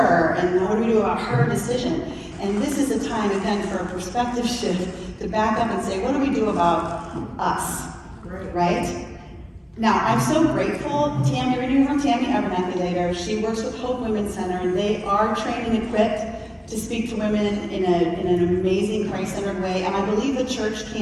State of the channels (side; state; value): both; identical; correlation 1.00